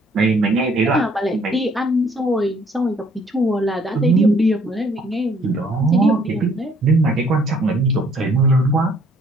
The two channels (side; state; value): both; normal; correlation 0.62